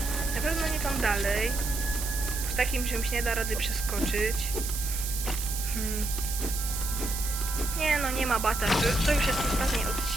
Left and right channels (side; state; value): right; noise; hiss, 5 dB below the sound